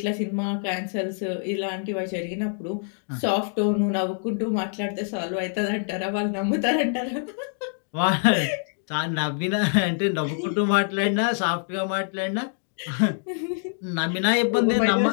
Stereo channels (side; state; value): right; silent; digital silence